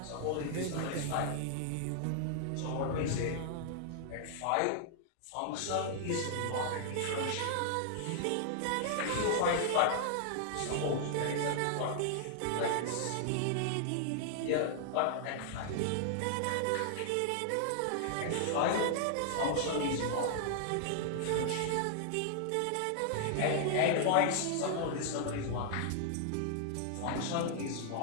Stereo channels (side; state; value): both; different; correlation -0.01